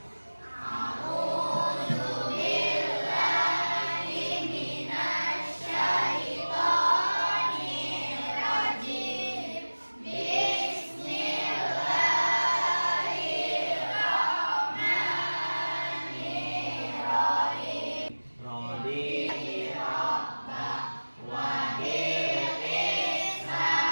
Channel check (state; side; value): inverted; both; correlation -1.00